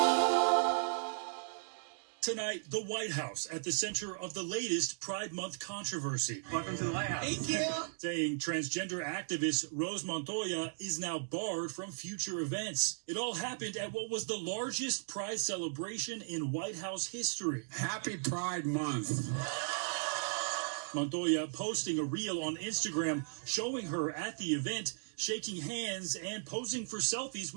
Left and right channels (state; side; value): silent; left; digital silence